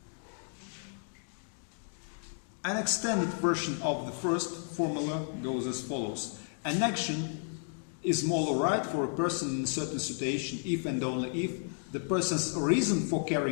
An extended version of the first formula goes as follows. An action is moral right for a person in a certain situation if and only if the person's reason for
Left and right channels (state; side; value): silent; right; 56 dB below the other